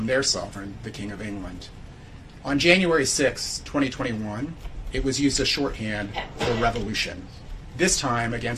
their sovereign, the King of England. On January 6, 2021, it was used as shorthand for revolution, this time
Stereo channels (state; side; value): identical; both; correlation 1.00